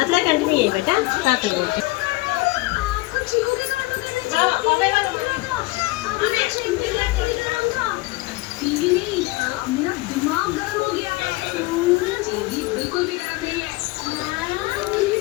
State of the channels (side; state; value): right; quieter; 21.2 dB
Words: కంటిన్యూ అయ్యి బేట హ్యాపీగా